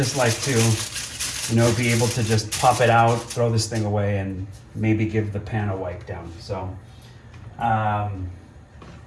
like to, be able to just pop it out, throw this thing away, and maybe give the pan a wipe down. So, I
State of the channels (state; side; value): identical; both; correlation 1.00